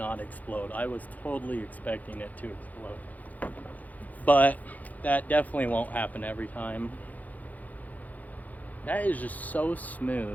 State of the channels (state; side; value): late; right; 0.079 ms